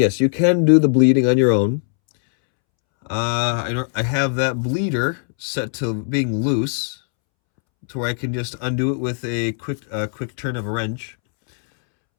you can do the bleeding on your own. I have that bleeder set to being loose, to where I can just undo it with a quick turn of a wrench.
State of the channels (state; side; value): silent; right; 66 dB below the other